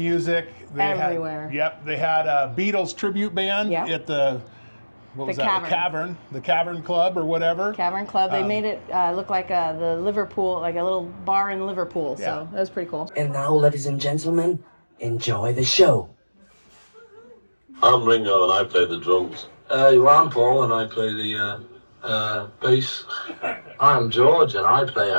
Everywhere. They had a Beatles tribute band at the Cavern. The Cavern Club or whatever. Cavern Club. They made it look like the Liverpool, like a little bar in Liverpool. So that was pretty cool. And now, ladies and gentlemen, enjoy the show. I'm Ringo and I play the drums. I'm Paul and I play the bass. I'm George and I play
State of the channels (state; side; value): inverted; both; correlation -1.00